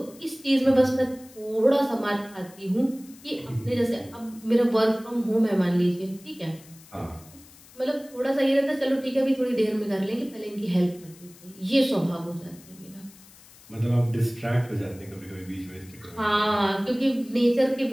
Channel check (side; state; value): left; noise; hiss, 23 dB below the sound